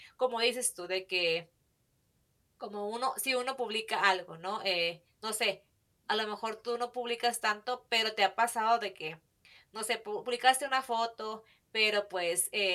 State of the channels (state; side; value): identical; both; correlation 1.00